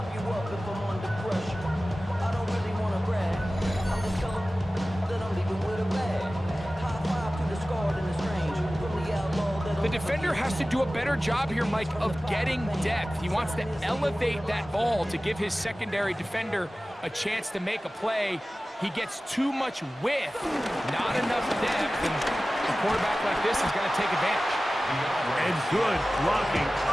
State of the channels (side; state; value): both; normal; correlation 0.96